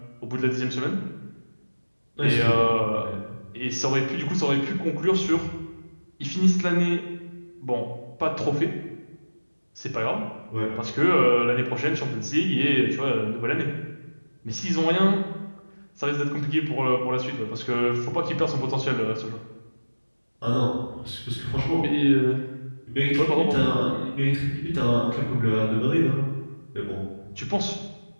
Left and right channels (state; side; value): inverted; both; correlation -1.00